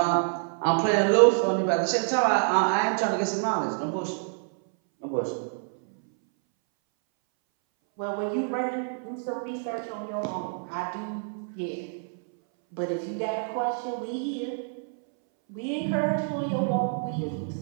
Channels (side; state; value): left; silent; 60 dB below the other